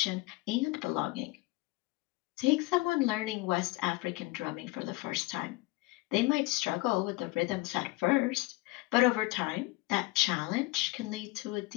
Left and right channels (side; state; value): right; quieter; 21.4 dB